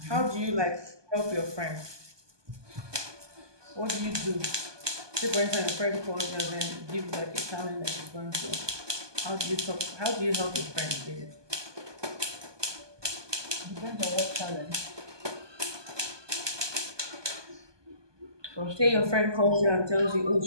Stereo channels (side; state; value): left; late; 1.2 ms